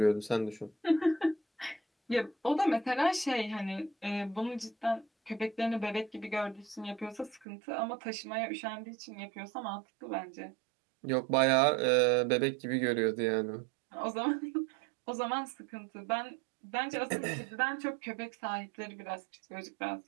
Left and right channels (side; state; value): left; drops out; at 7.5 s